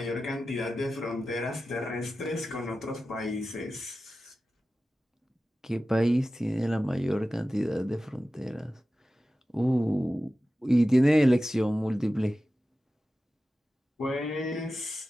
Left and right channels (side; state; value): both; normal; correlation 0.94